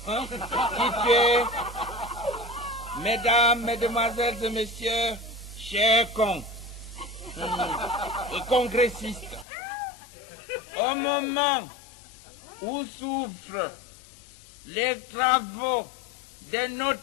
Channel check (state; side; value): drops out; right; at 9.5 s